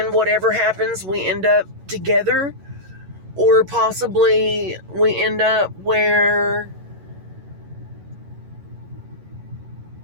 whatever happens, we end up together, or possibly we end up where,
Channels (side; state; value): left; late; 11 ms